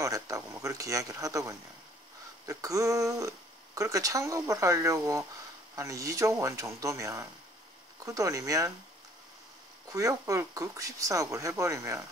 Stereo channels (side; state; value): both; normal; correlation 0.57